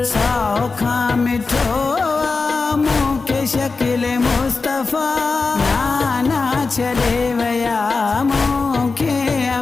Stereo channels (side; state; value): right; quieter; 4.2 dB